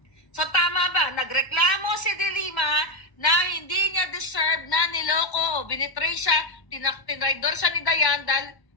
So tama ba? Nagreklamo si De Lima na hindi niya deserve na niloko, binitray siya, tinraidor siya ni Dayan dahil,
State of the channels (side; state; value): right; late; 1.1 ms